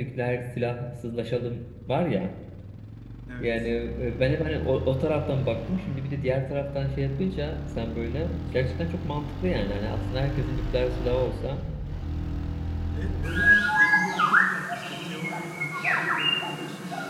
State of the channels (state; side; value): identical; both; correlation 1.00